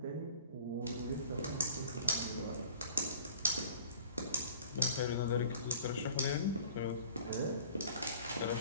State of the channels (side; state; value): both; inverted; correlation -0.46